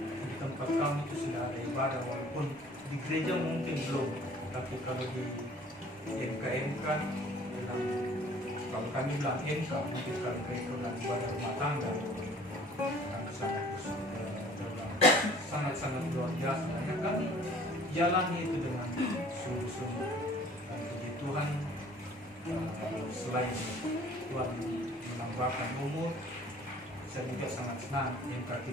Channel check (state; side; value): normal; both; correlation 0.52